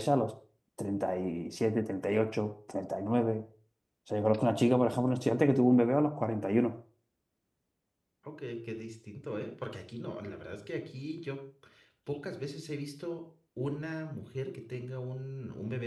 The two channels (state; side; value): identical; both; correlation 1.00